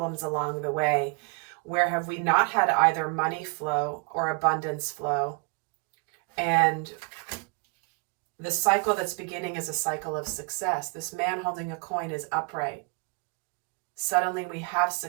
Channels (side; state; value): left; quieter; 34.0 dB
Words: along the way. Where have we not had either money flow or abundance flow? And the cycle that's beginning is a cycle of success. This man holding a coin is upright. Suddenly we have